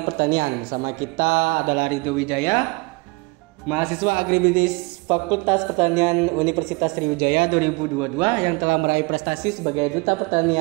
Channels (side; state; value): left; quieter; 26.6 dB